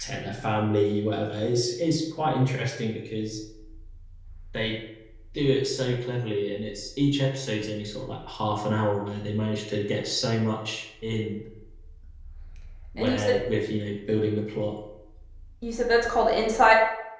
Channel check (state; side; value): identical; both; correlation 1.00